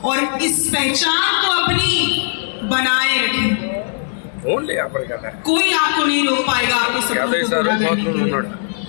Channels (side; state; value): right; silent; digital silence